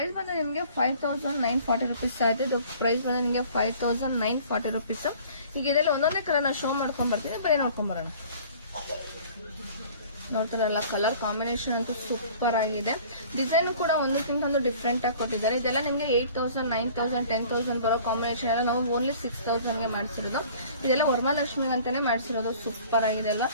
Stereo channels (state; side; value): inverted; both; correlation -0.49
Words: ಬಂದು ನಿಮಗೆ 5940 rupees ಆಯ್ತು. ಇದು ಪ್ರೈಸ್ ಬಂದು ನಿಮಗೆ 5940 rupees. ಈಗ ಇದರಲ್ಲಿ ಒಂದೊಂದೇ ಕಲರ್ ನಾನು ಶೋ ಮಾಡ್ಕೊಂಡ್ ಬರ್ತೀನಿ, ಬರೀ ನೋಡ್ಕೊಂಡ್ ಬರೋಣ. ನೋಡ್ತಾರಲ್ಲ, ಕಲರ್ ಕಾಂಬಿನೇಷನ್ ಅಂತೂ ಸೂಪರ್ ಆಗಿದೆ. ಡಿಸೈನ್ ಕೂಡ ಒಂದಕ್ಕಿಂತ ಒಂದು ಡಿಫ್ರೆಂಟ್ ಆಗಿ ಕೊಟ್ಟಿದ್ದಾರೆ. ಇದೆಲ್ಲ ನಿಮಗೆ 8000, 9000, 10,000 ಬರೋ ಕಾಂಬಿನೇಷನ್ ಎಲ್ಲ ನಾವು ಓನ್ಲಿ 6000 ಗೆ ಮಾಡಿಸಿರೋದು. ಇದೆಲ್ಲ ವರಮಹಾಲಕ್ಷ್ಮಿ ಅಂತಾನೆ ಮಾಡಿಸಿರೋದು. ಸೂಪರ್ ಆಗಿದೆ ಎಲ್ಲ.